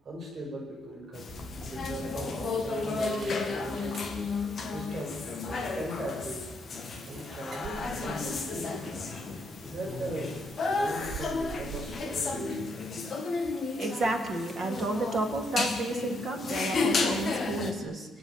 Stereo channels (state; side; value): normal; both; correlation 0.75